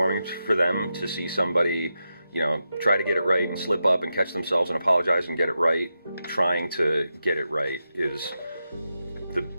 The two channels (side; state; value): both; inverted; correlation -0.88